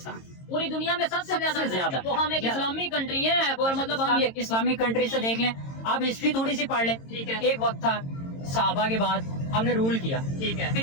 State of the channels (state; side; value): late; right; 22 ms